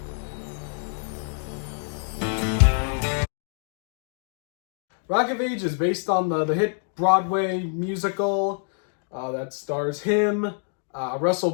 Rock of Ages, based on the hit Broadway musical that stars him, Russell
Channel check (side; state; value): right; silent; 61 dB below the other